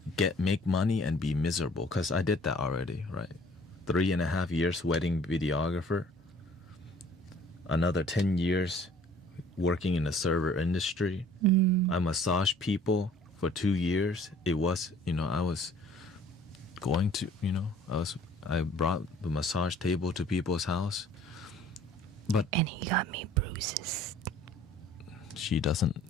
make money and be miserable, because I did that already, right? 3.5 years wedding videographer, another 10 years working in the server industry. I massaged people for 2 years. It was, you know, I was going to, you know, I brought the massage table to people's house, but and he got me bruises. She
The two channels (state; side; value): normal; both; correlation 0.53